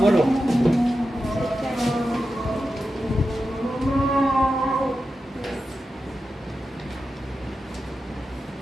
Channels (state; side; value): normal; both; correlation 0.91